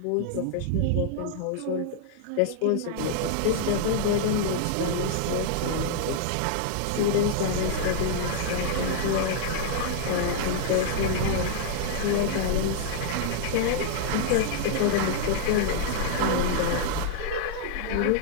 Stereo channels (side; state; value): both; different; correlation -0.01